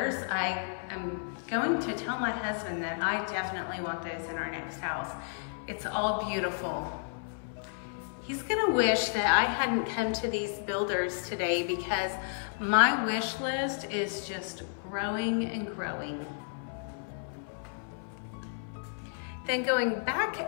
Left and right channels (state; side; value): silent; right; 56 dB below the other